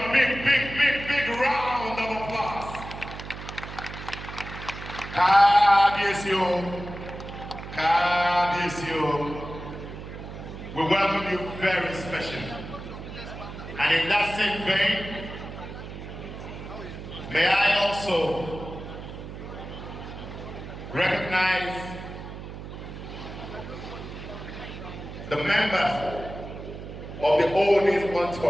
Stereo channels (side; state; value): right; noise; hum, 11 dB below the sound